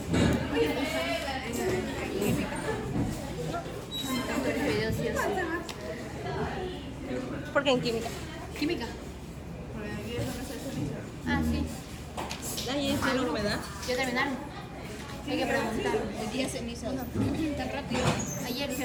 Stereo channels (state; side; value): identical; both; correlation 1.00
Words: ¿Por qué en química? Química. Ah, sí. Ahí es la humedad. ¿Ya terminaron? Hay que preguntar. El día ceniza. Tan rápido. Ayer